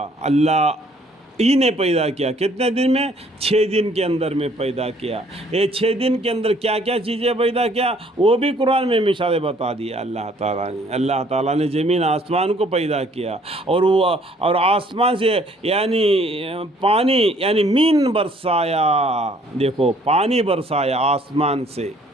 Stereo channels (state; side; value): normal; both; correlation 0.60